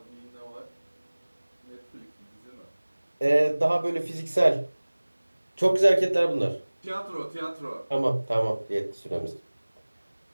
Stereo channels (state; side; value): inverted; both; correlation -1.00